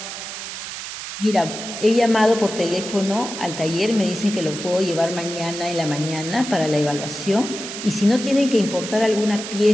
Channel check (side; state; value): right; noise; hiss, 8 dB below the sound